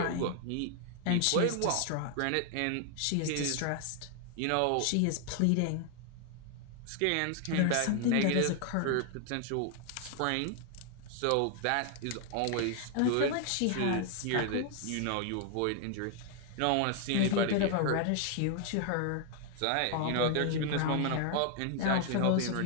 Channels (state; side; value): different; both; correlation 0.00